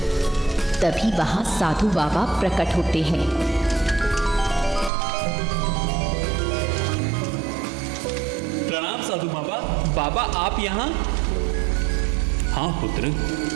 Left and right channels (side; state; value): left; drops out; at 4.9 s